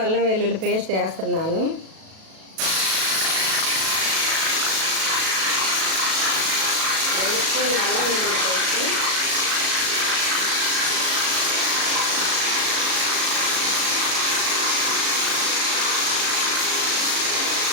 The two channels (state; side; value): late; left; 37 ms